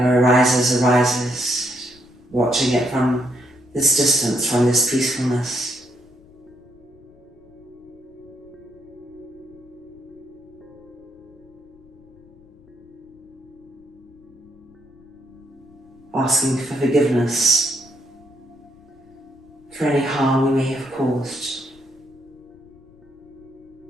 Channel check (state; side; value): noise; left; rumble, 27 dB below the sound